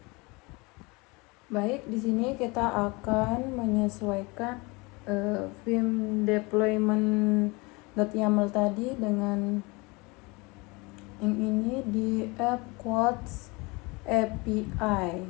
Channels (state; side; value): quieter; right; 26.3 dB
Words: Baik, di sini kita akan menyesuaikan vim deployment.yaml tadi dengan yang ini di app Codes API.